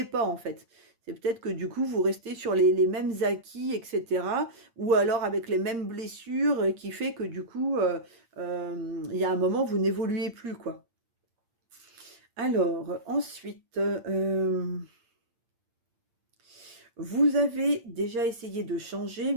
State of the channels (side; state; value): left; late; 8.7 ms